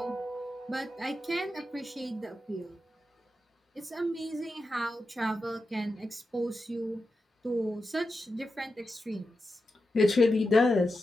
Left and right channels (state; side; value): normal; both; correlation 0.90